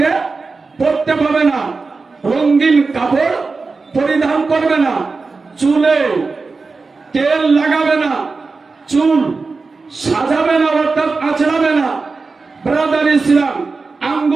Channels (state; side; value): quieter; left; 4.1 dB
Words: পরতে পারবে না, রঙিন কাপড় পরিধান করবে না, চুলে তেল লাগাবে না, চুল সাজাবে না, অর্থাৎ আঁচড়াবে না। ব্রাদার ইসলাম